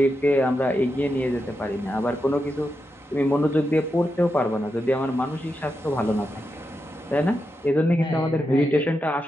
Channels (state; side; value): normal; both; correlation 0.87